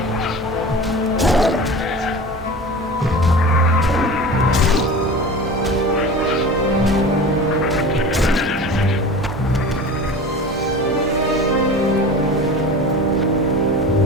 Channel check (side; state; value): both; normal; correlation 0.35